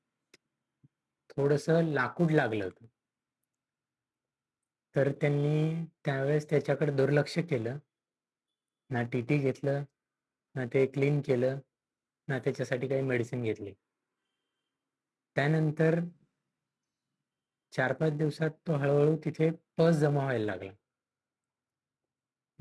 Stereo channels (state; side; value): identical; both; correlation 1.00